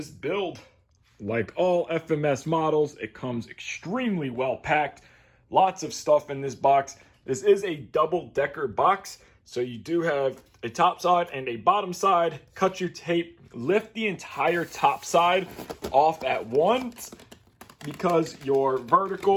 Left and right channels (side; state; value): both; identical; correlation 1.00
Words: build. Like all FMS models, it comes extremely well packed. Lots of stuff in this box. This is a double-decker box. So you do have a top side and a bottom side. Cut your tape, lift the entire top side off at once because your